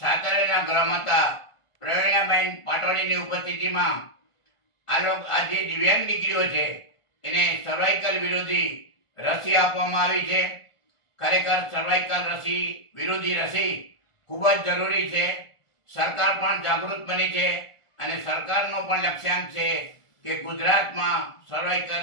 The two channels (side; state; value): right; late; 1.4 ms